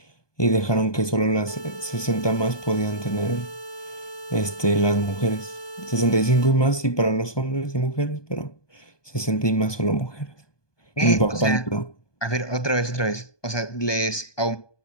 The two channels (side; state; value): right; late; 1.2 ms